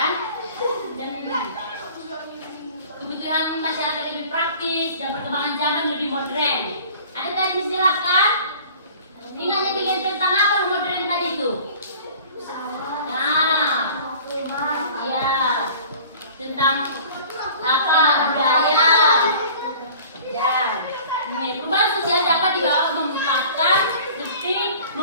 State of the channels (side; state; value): both; inverted; correlation -0.45